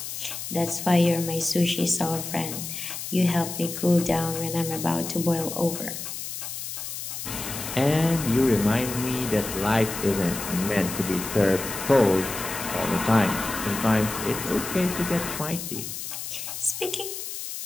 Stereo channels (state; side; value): noise; left; hiss, 7 dB below the sound